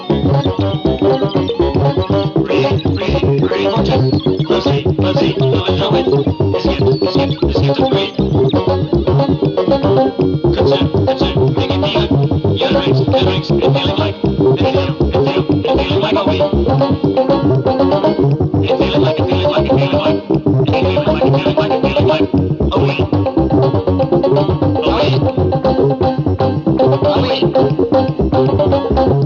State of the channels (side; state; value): both; identical; correlation 1.00